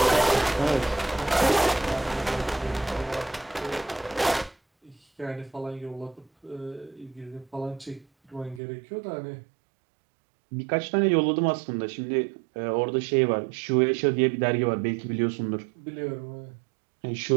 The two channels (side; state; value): left; drops out; at 8.6 s